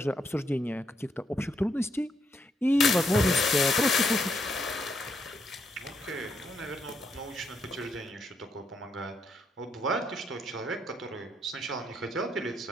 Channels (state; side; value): normal; both; correlation 0.76